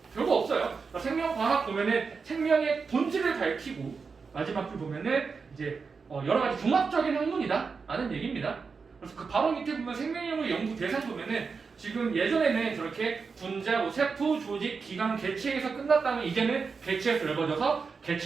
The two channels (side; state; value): left; quieter; 5.1 dB